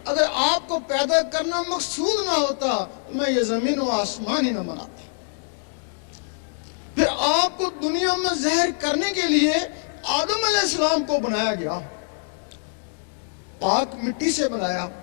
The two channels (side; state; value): right; silent; digital silence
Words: اگر آپ کو پیدا کرنا مقصود نہ ہوتا تو میں یہ زمین و آسمان ہی نہ بناتا۔ پھر آپ کو دنیا میں زہر کرنے کے لیے آدم علیہ السلام کو بنایا گیا، پاک مٹی سے بنایا،